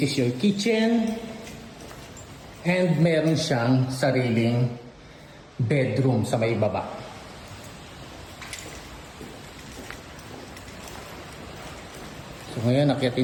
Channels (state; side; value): identical; both; correlation 1.00